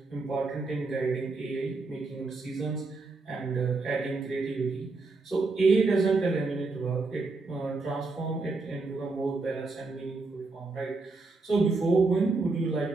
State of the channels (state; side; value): quieter; left; 3.7 dB